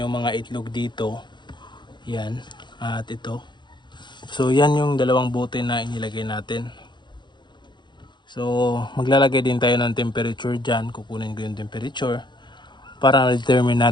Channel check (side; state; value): right; late; 0.22 ms